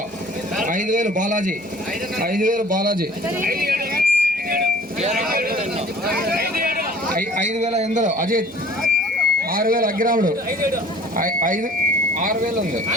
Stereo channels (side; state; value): right; noise; hum, 28 dB below the sound